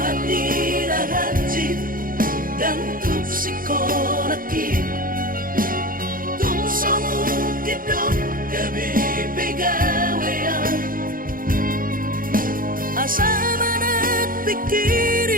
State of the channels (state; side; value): late; left; 0.41 ms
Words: dan tupsikolaki tungsomu kidot gabi pegawean asa manat